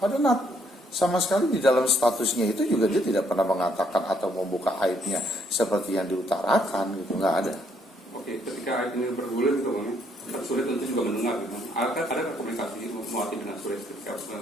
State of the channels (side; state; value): both; normal; correlation 0.70